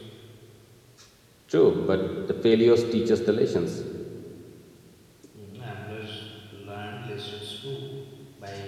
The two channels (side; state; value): both; identical; correlation 1.00